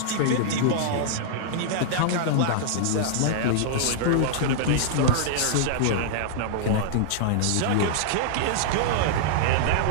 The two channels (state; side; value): different; both; correlation -0.01